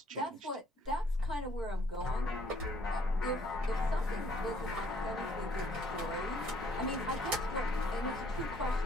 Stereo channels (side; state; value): both; normal; correlation 0.63